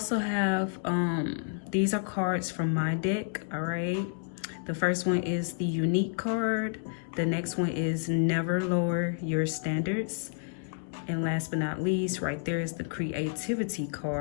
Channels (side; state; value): right; silent; digital silence